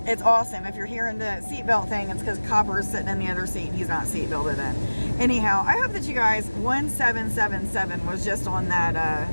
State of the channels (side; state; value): both; inverted; correlation -1.00